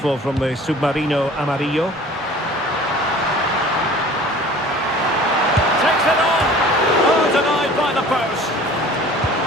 from the Submarino Amarillo. Takes it on! Oh, denied by the post.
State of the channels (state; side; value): normal; both; correlation 0.46